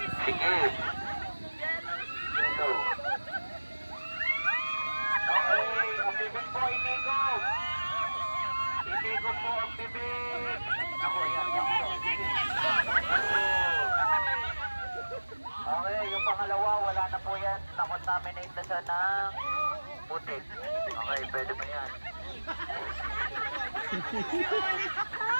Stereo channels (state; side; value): inverted; both; correlation -1.00